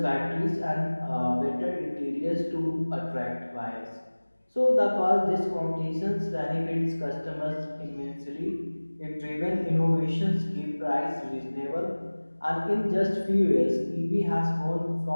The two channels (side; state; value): both; inverted; correlation -1.00